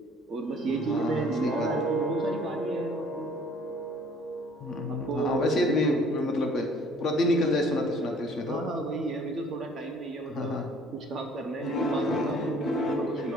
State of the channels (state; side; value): normal; both; correlation 0.56